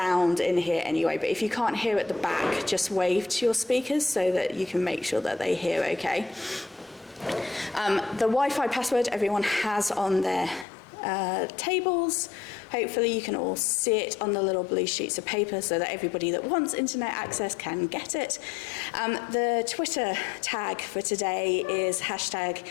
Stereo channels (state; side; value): drops out; right; at 10.7 s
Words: in here anyway. But if you can't hear at the back, just wave to your speakers so that you can make sure that they hear okay. The Wi-Fi password everyone has on their tables. Hopefully you can all see it on the little blue sheets of paper so that everybody that wants internet access can get it. The Twitter tag for today is